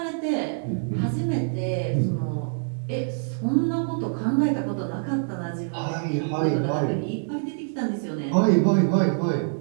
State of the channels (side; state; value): left; silent; digital silence